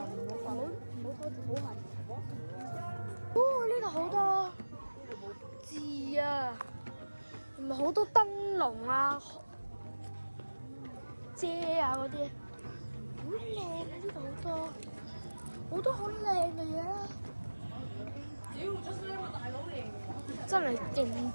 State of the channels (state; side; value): inverted; both; correlation -1.00